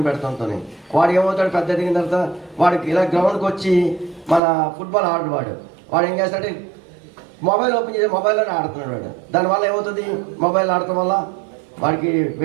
పెడుతుంటేనే. వాడు ఏమవుతాడు, పెద్ద ఎదిగిన తర్వాత వాడికి ఇలా గ్రౌండ్కి వచ్చి మన ఫుట్బాల్ ఆడు వాడు ఏం చేస్తాడంటే మొబైల్ ఓపెన్ చేసి మొబైల్లోనే ఆడుతున్నాడు వాడు. దానివల్ల ఏమవుతుంది, మొబైల్ ఆడటం వల్ల వాడికి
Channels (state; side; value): drops out; left; at 4.4 s